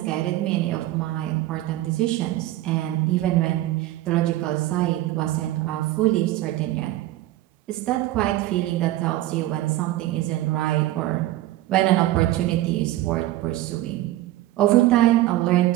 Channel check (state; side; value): quieter; left; 15.7 dB